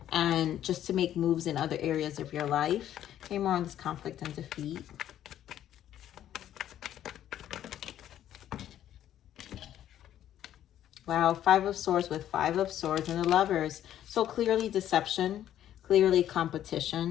and just to make moves in other areas of your life. Okay, more on this conflict and defeat. Wow, Five of Swords with Five of Swords and the Lovers. So clearly deception, clearly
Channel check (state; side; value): quieter; right; 11.4 dB